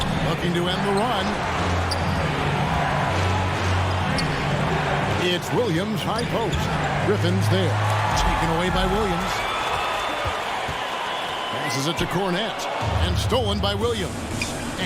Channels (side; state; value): both; identical; correlation 1.00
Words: Looking to end the run. It's Williams, high post. Griffin's there. Taken away by Williams. Passes it to Cornette. And stolen by Williams.